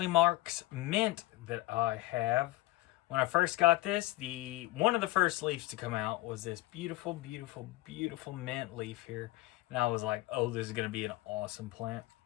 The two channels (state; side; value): quieter; right; 18.3 dB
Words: Marx mint that I have. When I first got this, one of the first leaves to come out was this beautiful, beautiful, beautiful mint leaf here. And I was like, oh, this is going to be an awesome plant.